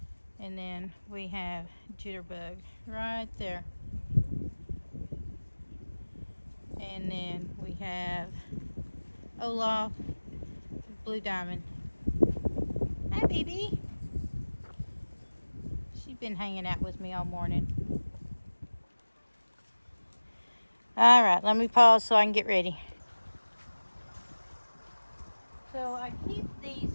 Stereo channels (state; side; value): inverted; both; correlation -1.00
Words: And then we have Jitterbug right there. And then we have Olaf, Blue Diamond. Hi, baby. She's been hanging out with me all morning. All right, let me pause so I can get ready. So I keep